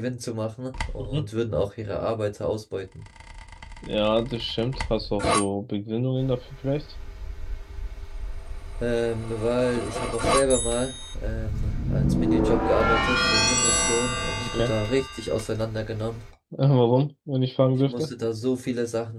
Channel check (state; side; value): identical; both; correlation 1.00